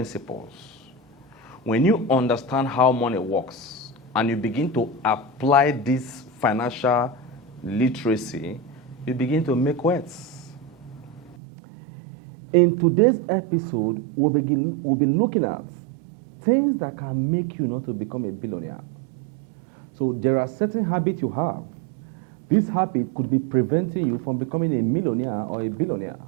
When you understand how money works and you begin to apply this financial literacy, you begin to make wealth. In today's episode, we'll be looking at things that can make you not to become a billionaire. So there are certain habits you have. This habit could be preventing you from becoming a millionaire or a billionaire.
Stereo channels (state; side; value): drops out; left; at 11.4 s